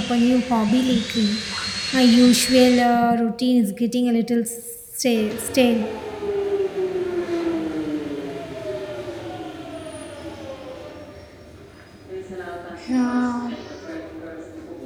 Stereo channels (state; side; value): identical; both; correlation 1.00